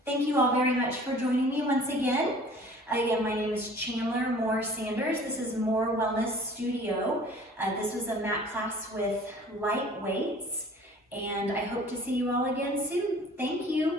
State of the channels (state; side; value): normal; both; correlation 0.49